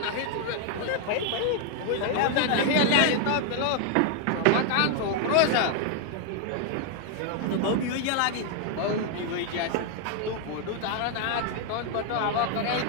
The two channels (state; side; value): different; both; correlation 0.00